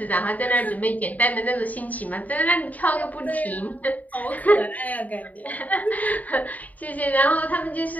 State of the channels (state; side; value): late; right; 0.074 ms